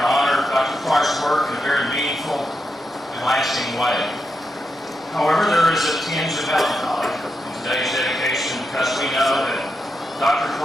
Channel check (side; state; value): both; normal; correlation 0.85